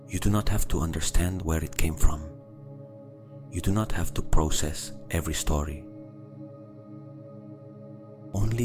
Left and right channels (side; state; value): both; identical; correlation 1.00